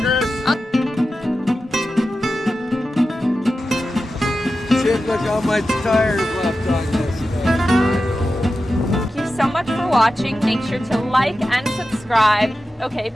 Chris. Shit, look how much tires left on this thing. Thank you so much for watching. Make sure to like and subscribe. Okay,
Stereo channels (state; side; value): normal; both; correlation 0.92